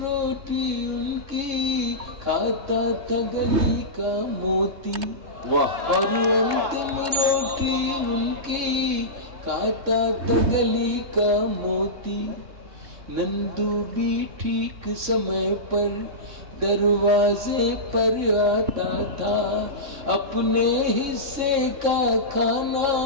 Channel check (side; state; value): left; late; 3.6 ms